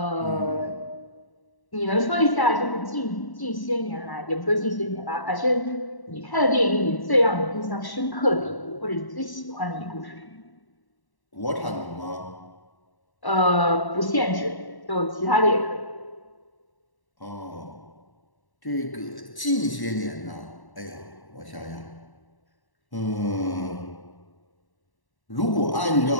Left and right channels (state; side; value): late; right; 1.1 ms